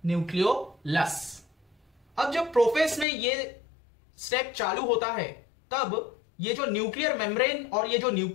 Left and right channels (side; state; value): right; drops out; at 3.1 s